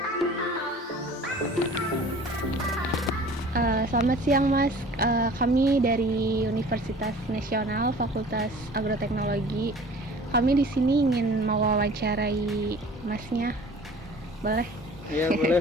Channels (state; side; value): normal; both; correlation 0.46